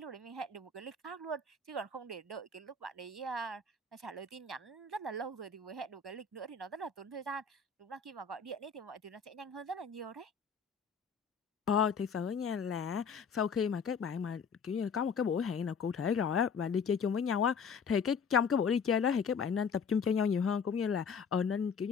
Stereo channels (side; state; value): right; quieter; 5.8 dB